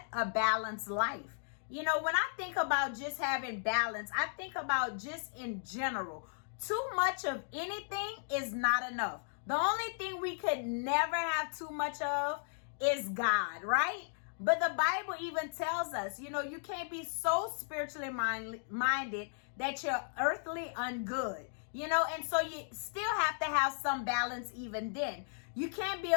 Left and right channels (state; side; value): silent; right; digital silence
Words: a balanced life. You know, when I think about just having balance, I think about just in general. Too much of anything is not enough. The only thing we could never have too much of is God, right? But the Bible even tells us, you know, you can't be so spiritually minded that you're earthly ungood. You know, and so you still have to have some balance even then. You can't be